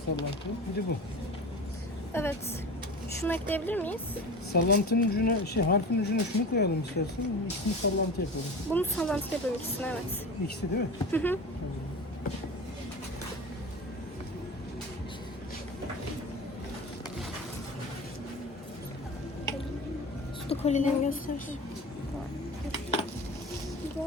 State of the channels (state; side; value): normal; both; correlation 0.32